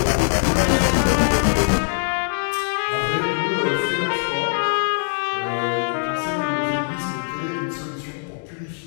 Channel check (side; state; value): right; silent; digital silence